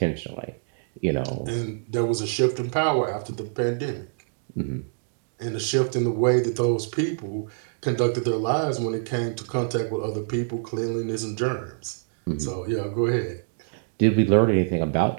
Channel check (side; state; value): left; silent; digital silence